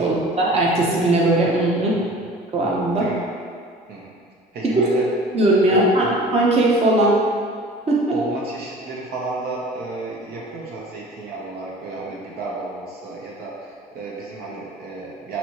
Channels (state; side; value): normal; both; correlation 0.44